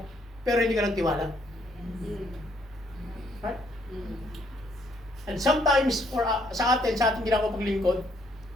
pero hindi ka nagtiwala. Right? And sometimes, sa ating ginagawa paglingkod,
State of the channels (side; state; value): both; normal; correlation 0.69